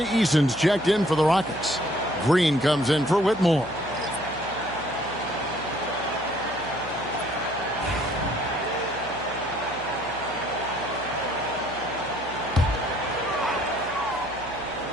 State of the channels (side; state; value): right; noise; hum, 17 dB below the sound